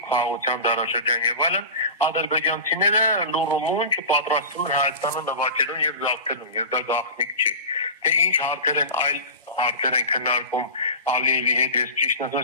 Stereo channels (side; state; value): both; inverted; correlation -0.30